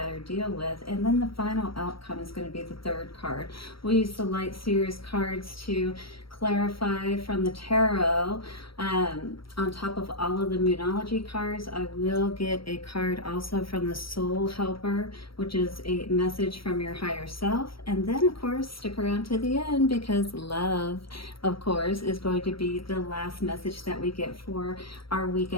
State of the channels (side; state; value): right; late; 0.75 ms